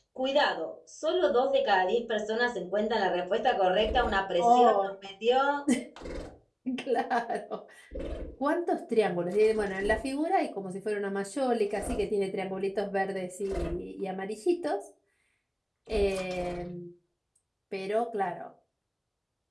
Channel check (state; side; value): identical; both; correlation 1.00